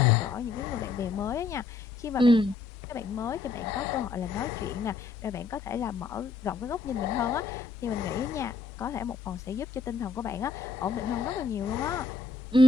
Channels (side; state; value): right; quieter; 4.2 dB